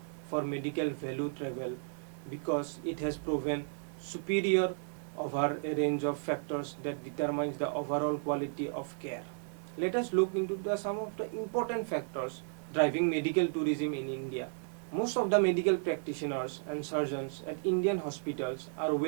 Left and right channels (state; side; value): silent; left; digital silence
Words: for medical value travel because it has proven superior over a range of factors that determines the overall quality of care. Let us look into some of the important factors driving medical tourism in India. Most of the medical practitioners and surgeons at Indian hospitals are